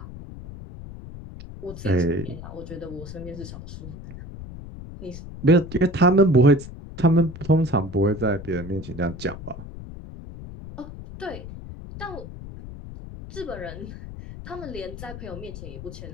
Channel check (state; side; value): noise; left; rumble, 12 dB below the sound